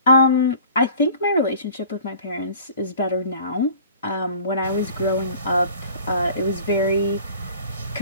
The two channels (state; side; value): inverted; both; correlation -0.46